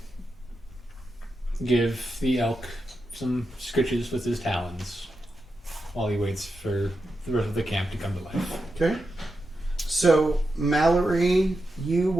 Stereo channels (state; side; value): normal; both; correlation 0.88